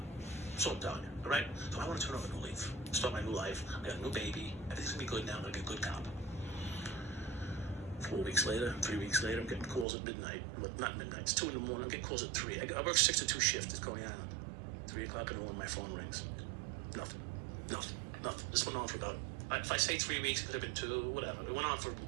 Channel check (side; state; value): left; drops out; at 9.9 s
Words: So I'm telling you, all right? So I want to turn over a new leaf, start my new life. I got a new baby. Everything's going to be good now. I'm going to be a good cop." 3 weeks later, I'm getting calls at midnight. Not midnight, it's 2 in the morning. I'm getting calls at 3. I work 6 to 2 shift at Coney Island. 3 o'clock in the morning, my phone rings. Nothing. This went on for about, if I say 3 weeks, it could have been 2, whatever. It went on for an